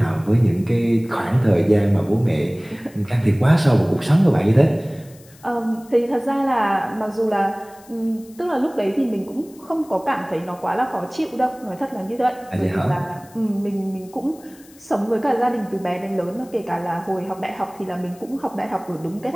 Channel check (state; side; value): noise; left; hiss, 25 dB below the sound